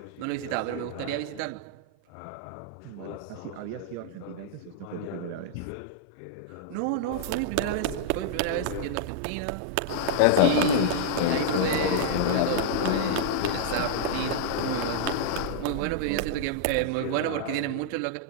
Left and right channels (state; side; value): different; both; correlation -0.01